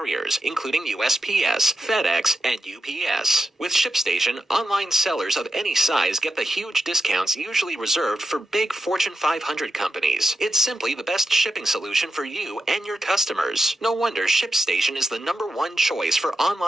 including USPS, FedEx, and UPS. With ShipStation, online sellers of any size get the huge discounts usually reserved for big Fortune 500 companies. It's simply the best shipping solution for you and your customers. No wonder ShipStation is the #1 choice for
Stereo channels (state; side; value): normal; both; correlation 0.88